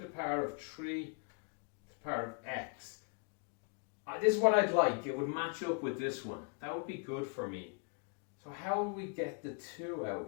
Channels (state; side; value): quieter; right; 38.4 dB